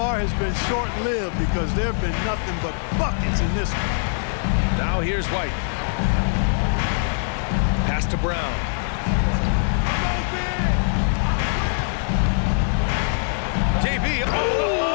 has been short-lived because there have been nothing but buckets in this one. Now here's White. Pass to Brown. JB,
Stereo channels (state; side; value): silent; right; digital silence